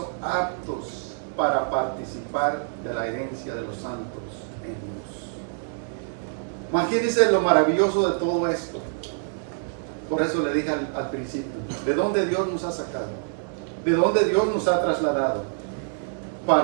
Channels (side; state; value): left; silent; digital silence